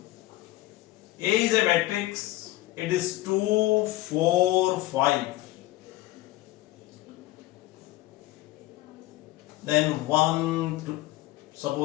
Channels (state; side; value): quieter; right; 17.4 dB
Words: A is a matrix, it is 2, 4, 5. Then 1, 2,